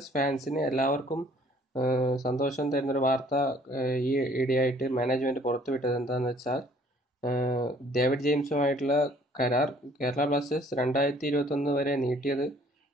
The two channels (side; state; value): both; normal; correlation 0.58